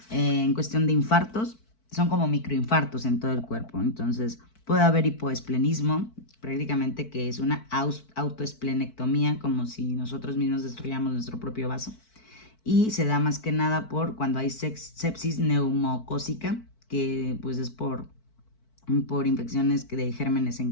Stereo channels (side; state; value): right; late; 4.5 ms